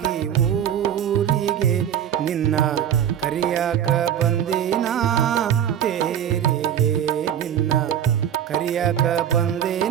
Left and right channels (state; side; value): quieter; left; 9.8 dB